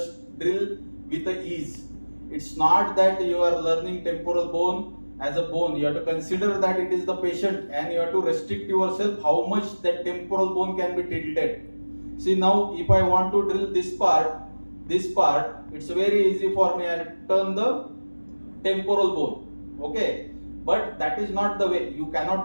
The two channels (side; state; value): both; inverted; correlation -1.00